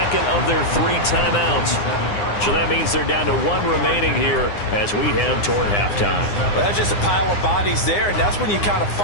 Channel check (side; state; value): right; late; 9.8 ms